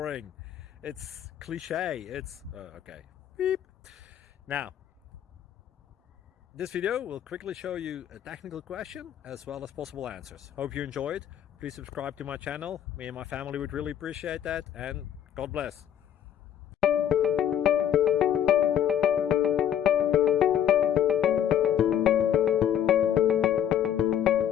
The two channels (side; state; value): right; quieter; 10.0 dB